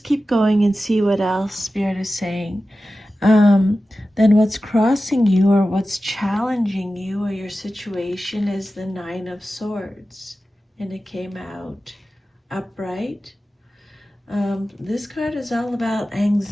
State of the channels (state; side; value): normal; both; correlation 0.94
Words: keep going and see what else Spirit is saying. Then what's crossing you or what's challenging you or your situation is the Nine of Swords. And it came out upright. This card is all about